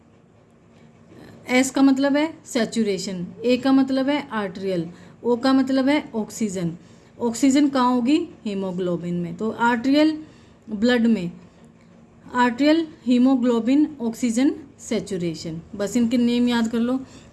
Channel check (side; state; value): both; identical; correlation 1.00